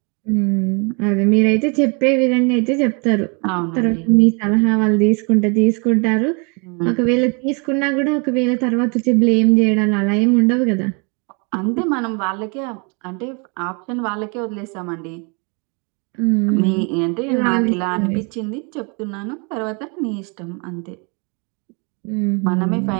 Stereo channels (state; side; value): quieter; left; 33.5 dB